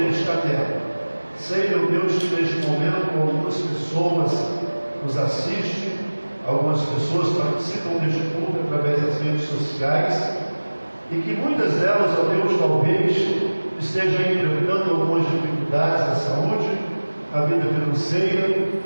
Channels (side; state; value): both; inverted; correlation -1.00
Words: está nela. Sei, meu Deus, que neste momento algumas pessoas nos assistem, algumas pessoas participam deste culto através das redes sociais, e que muitas delas, ó Deus, talvez estejam enfrentando algumas dificuldades na saúde, na vida financeira,